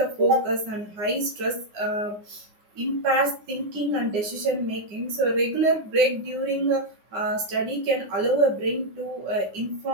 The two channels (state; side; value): late; left; 9.8 ms